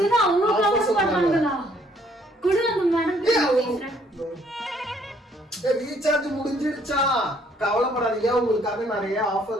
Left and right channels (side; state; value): both; normal; correlation 0.65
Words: தான் அவ்வளவு கவர் பண்ணாங்களா? குடு அந்த மேடம். ரீசார்ஜ் முடிஞ்சிருச்சா? கவலைப்படாதீங்க, உங்களுக்காக நிறைய